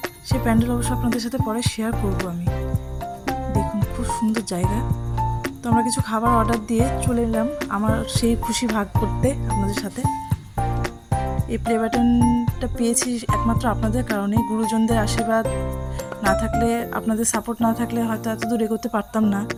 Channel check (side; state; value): both; identical; correlation 1.00